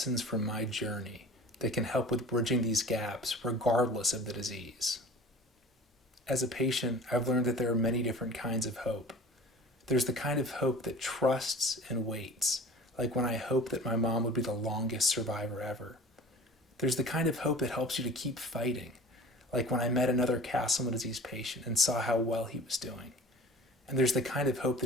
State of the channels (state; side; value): normal; both; correlation 0.42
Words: from my journey that can help with bridging these gaps regardless of the disease. As a patient, I've learned that there are many different kinds of hope. There's the kind of hope that trusts and waits, like when I hoped that my mom would be the longest survivor ever. There's the kind of hope that helps you to keep fighting, like when I met another Castleman disease patient and saw how well he was doing. And there's the kind of hope